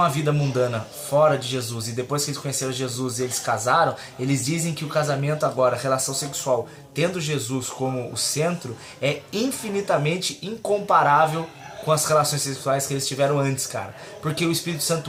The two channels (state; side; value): identical; both; correlation 1.00